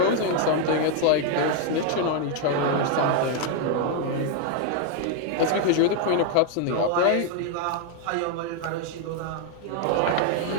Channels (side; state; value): both; different; correlation 0.00